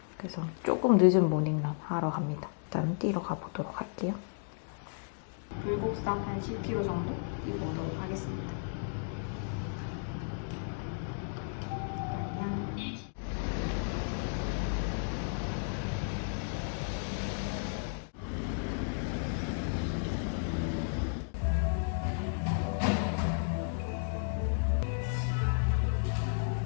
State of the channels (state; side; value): silent; right; digital silence